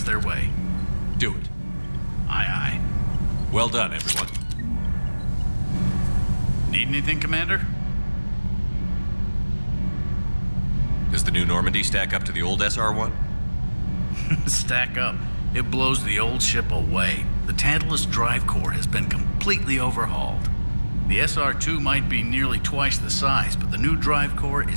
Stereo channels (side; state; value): both; inverted; correlation -1.00